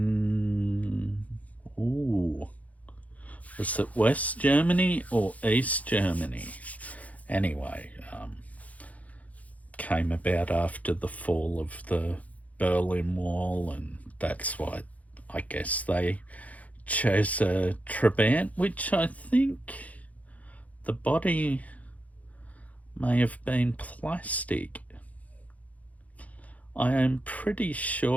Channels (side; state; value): right; late; 0.070 ms